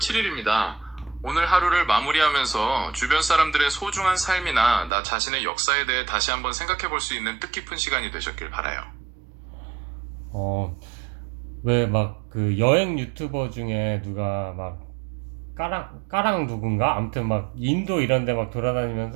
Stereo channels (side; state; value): left; drops out; at 4.9 s